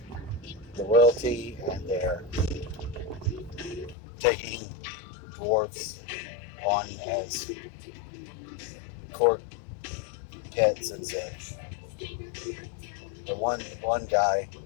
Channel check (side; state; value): right; drops out; at 4.0 s